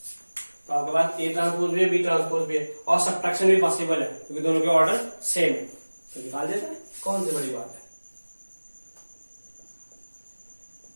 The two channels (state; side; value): inverted; both; correlation -1.00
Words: तो आपके पास ए ट्रांसपोज भी है, बी ट्रांसपोज भी है, और सब्ट्रैक्शन भी पॉसिबल है क्योंकि दोनों के ऑर्डर सेम है। तो निकाल देते हैं, कौन सी बड़ी बात है।